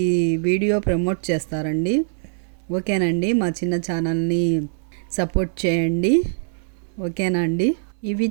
వీడియో ప్రమోట్ చేస్తారండి. ఓకేనండి, మా చిన్న ఛానల్ని సపోర్ట్ చేయండి. ఓకేనా అండి? ఇవి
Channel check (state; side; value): silent; left; 64 dB below the other